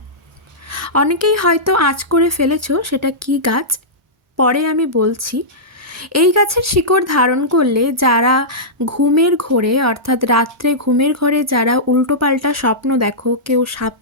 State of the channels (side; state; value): both; normal; correlation -0.14